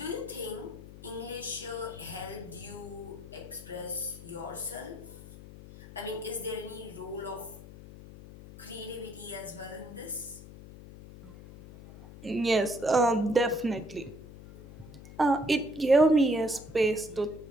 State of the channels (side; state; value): left; noise; hum, 16 dB below the sound